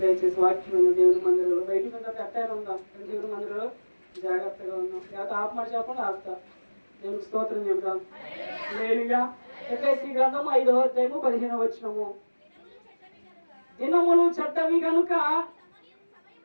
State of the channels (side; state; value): both; inverted; correlation -1.00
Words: దయచేసి వాక్యం దేవుని మందిరంలో బయట అట్టారు ఉందాం. దేవుని మందిరంలో జాగ్రత్తగా ఉన్నాం. లేకపోతే ఆపమాట చెప్పండి ఆపుతా. దేవునికి స్తోత్రం చెబుతాం. హల్లెలూయా. ఎఫెసీ గ్రంథం 5వ అధ్యాయము 15వ వచనము. దినములు చెడ్డవి కనుక